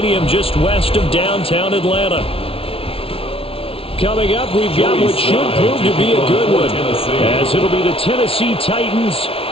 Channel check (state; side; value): late; right; 0.26 ms